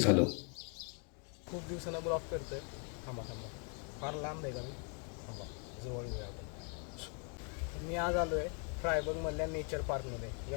खूप दिवसांना ब्लॉग करतोय. थांबा थांबा, फार लांब आहे का मी? थांबा, जवळ येऊया आपण. मी आज आलो आहे फ्रायबर्गमधल्या नेचर पार्कमध्ये.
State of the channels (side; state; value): right; quieter; 39.3 dB